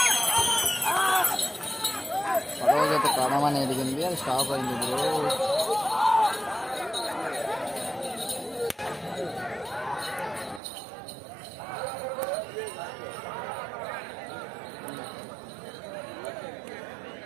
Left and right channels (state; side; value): drops out; left; at 10.6 s